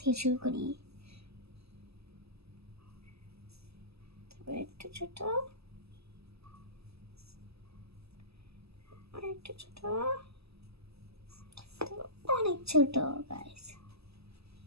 শুরু করি। তারপরে একটু ছোট, একটু ছোট, অনেক ছোট গাইস।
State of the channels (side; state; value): left; late; 0.78 ms